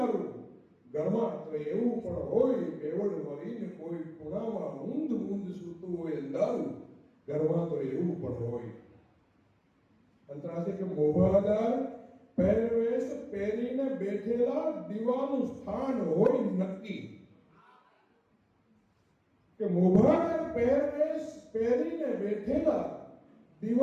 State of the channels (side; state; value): both; identical; correlation 1.00